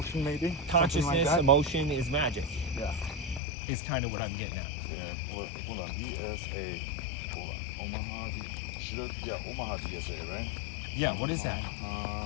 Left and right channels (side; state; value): right; drops out; at 3.4 s